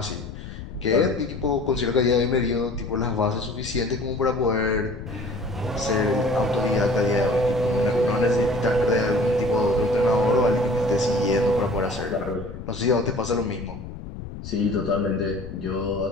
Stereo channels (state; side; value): noise; left; rumble, 11 dB below the sound